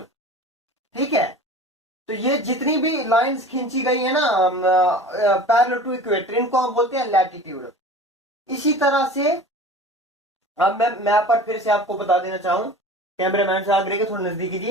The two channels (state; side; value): normal; both; correlation 0.39